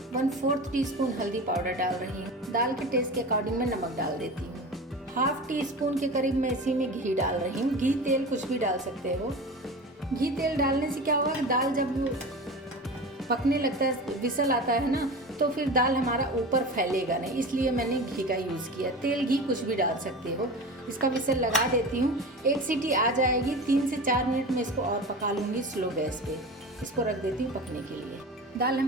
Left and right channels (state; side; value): normal; both; correlation 0.31